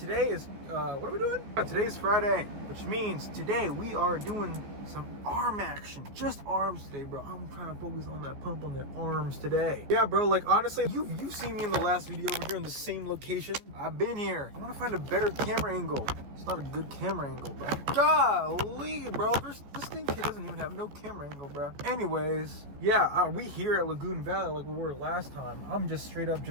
is, what are we doing? Today's Friday, which means today we are doing some arm action. Just arms today, bro. I'm trying to focus on that pump on the arms today. Yeah, bro, like honestly, you've seen me in the last video over here in the same location. I've been here. I want to find a better camera angle. It's not a good camera angle, bro. Golly, bro. This thing doesn't even have no camera angle, bro. Anyways, yeah, we here at Lagoon Valley like we were last time. I'm just straight up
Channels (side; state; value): left; late; 14 ms